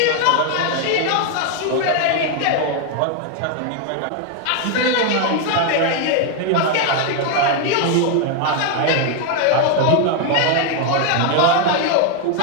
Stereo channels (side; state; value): both; different; correlation 0.00